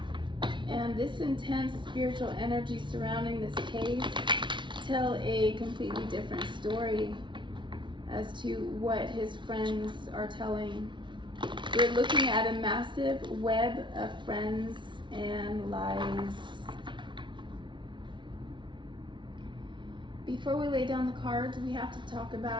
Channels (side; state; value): left; late; 0.24 ms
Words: and this intense spiritual energy surrounding this case tell a completely different story as to what his friends are telling. We're looking at a massive web of friends and lies. Before we lay down the cards, we have to talk